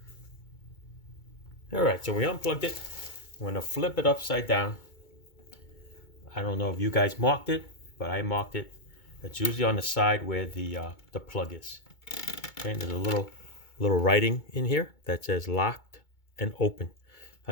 All right, so we unplugged it. I'm going to flip it upside down. I don't know if you guys marked it, but I marked it. It's usually on the side where the plug is. Okay, and there's a little writing in here that says locked and open.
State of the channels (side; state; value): right; late; 2.2 ms